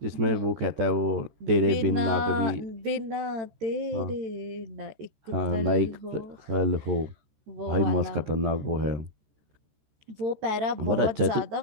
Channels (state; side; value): late; left; 13 ms